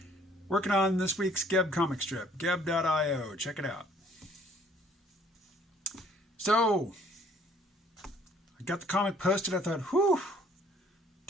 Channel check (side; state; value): both; normal; correlation 0.60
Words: Working on this week's Geb comic strip, geb.io. Check it out. So, I got the comic posted. I thought, whew,